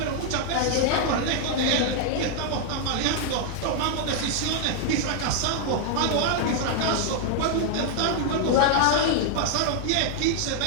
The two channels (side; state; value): both; different; correlation -0.01